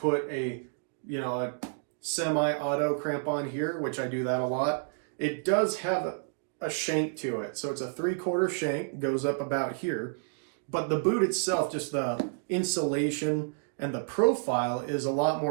a semi-auto crampon here, which I do that a lot. It does have a shank to it. So it's a 3/4 shank, goes up about here. But the boot itself, just the insulation and the profile is a lot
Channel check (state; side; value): silent; left; digital silence